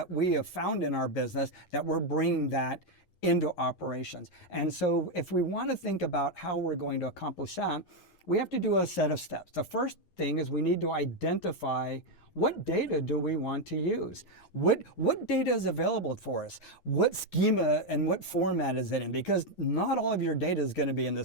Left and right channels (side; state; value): right; late; 11 ms